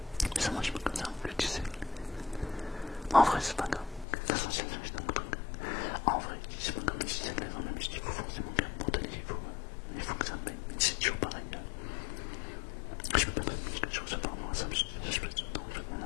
ça marche pas comme ça, que tu sais. En vrai, c'est pas grave. Ça, c'est juste un truc. En vrai, c'est pas comme si c'était dans la musique, il faut forcément bien monter, il faut que ça me paye. C'est toujours pareil. Je peux pas te dire que je reçois par moi, ça me je peux te dire, en fait, on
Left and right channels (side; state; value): right; drops out; at 4.0 s